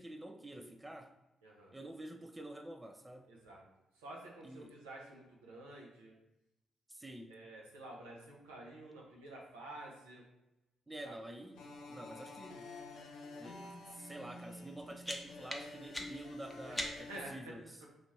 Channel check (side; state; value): both; normal; correlation 0.84